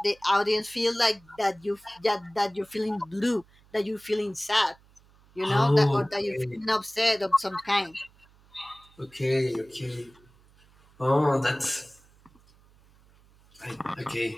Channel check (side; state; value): right; noise; hum, 29 dB below the sound